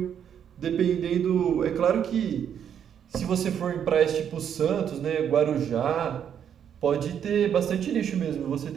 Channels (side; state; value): left; quieter; 8.7 dB